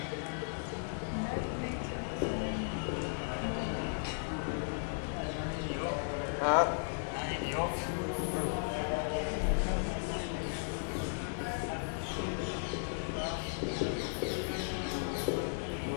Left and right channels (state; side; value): silent; right; digital silence